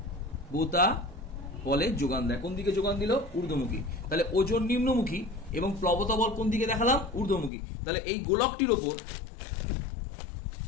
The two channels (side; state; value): right; drops out; at 7.5 s